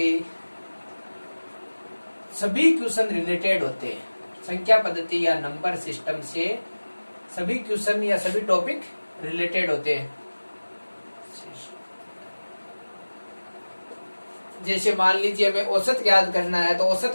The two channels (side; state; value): both; inverted; correlation -1.00